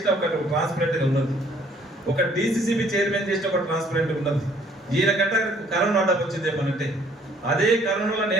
ఒక ట్రాన్స్పరెంట్గా ఉన్నది, ఒక డీసీసీబీ చైర్మన్ చేసిన ఒక ట్రాన్స్పరెంట్గా ఉన్నది. ఈయన గంట కరోనా ఆర్డర్ వచ్చింది ఏమనంటే అదే కరోనాలో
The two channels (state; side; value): normal; both; correlation 0.60